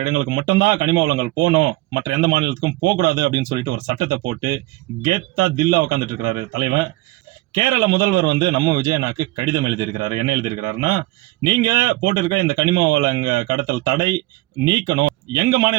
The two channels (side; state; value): left; quieter; 19.9 dB